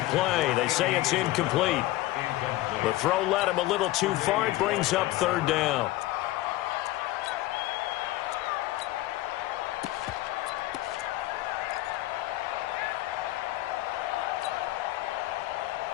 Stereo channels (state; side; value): quieter; right; 17.2 dB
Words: play. They say it's incomplete. The throw led him a little too far. It brings up 3rd down.